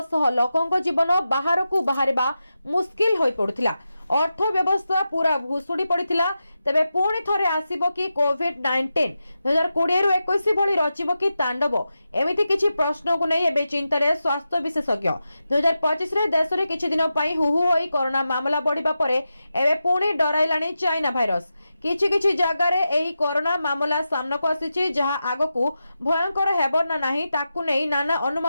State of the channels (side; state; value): both; inverted; correlation -0.90